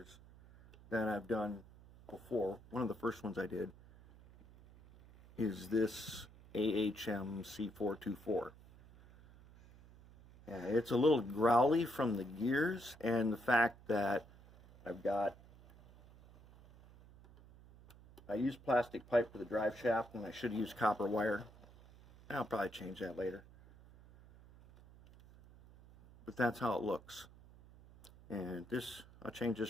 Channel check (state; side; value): noise; right; hum, 22 dB below the sound